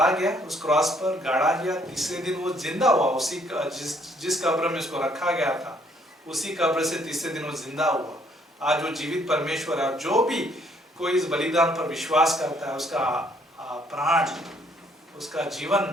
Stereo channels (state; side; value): normal; both; correlation 0.66